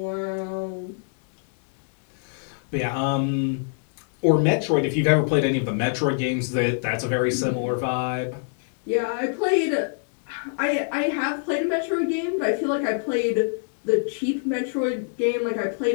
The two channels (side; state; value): right; silent; digital silence